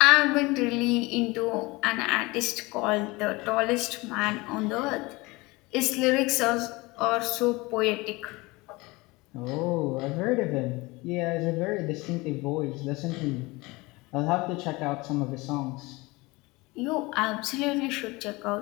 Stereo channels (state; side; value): quieter; right; 23.2 dB